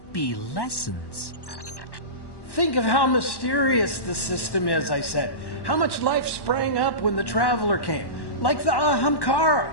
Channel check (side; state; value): right; late; 1.1 ms